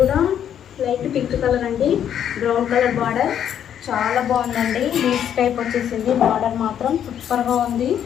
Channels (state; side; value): quieter; right; 9.5 dB